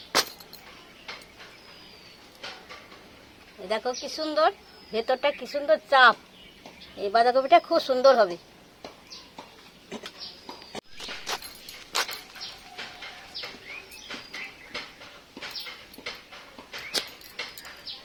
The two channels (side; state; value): both; identical; correlation 1.00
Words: দেখো কি সুন্দর, ভেতরটা কি সুন্দর চাপ। এই বাঁধাকপিটা খুব সুন্দর হবে।